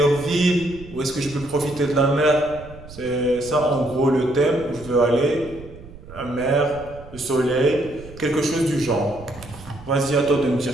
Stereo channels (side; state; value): right; noise; rumble, 17 dB below the sound